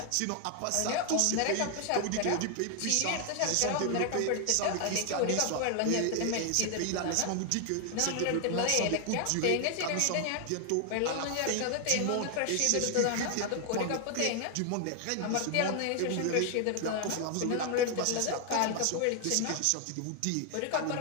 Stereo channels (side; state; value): both; different; correlation 0.00